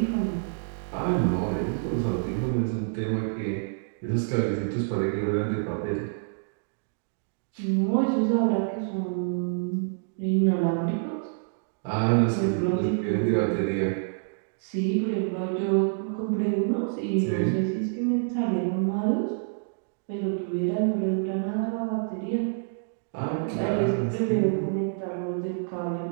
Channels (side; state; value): left; silent; digital silence